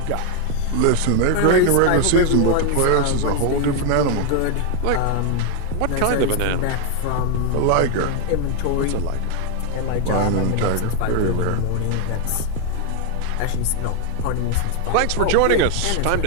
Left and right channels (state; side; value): different; both; correlation 0.01